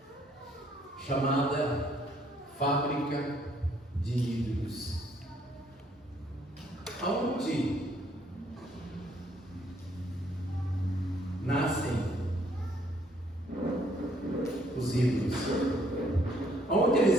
chamada Fábrica de Ídolos. Aonde nascem os ídolos? Onde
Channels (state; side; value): normal; both; correlation 0.66